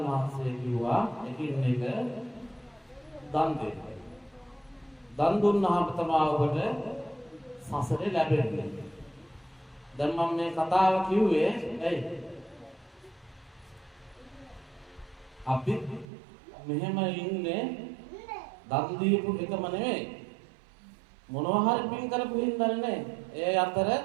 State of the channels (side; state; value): left; drops out; at 16.1 s